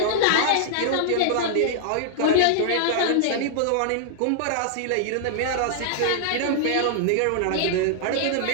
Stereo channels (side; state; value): both; different; correlation -0.01